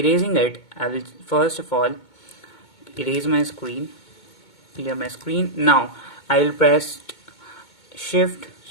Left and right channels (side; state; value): right; late; 2.2 ms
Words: it I will first of all erase my screen, clear my screen. Now I will press shift